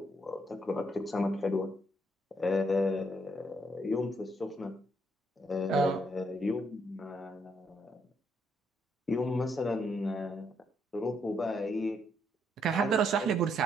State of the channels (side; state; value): both; normal; correlation 0.74